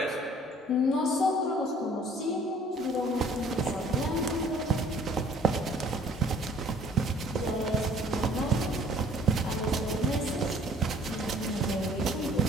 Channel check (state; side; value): normal; both; correlation 0.55